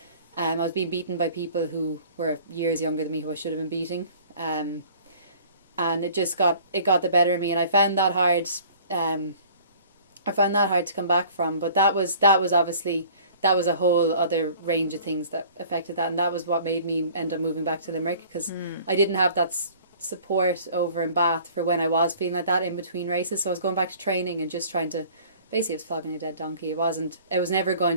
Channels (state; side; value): inverted; both; correlation -0.50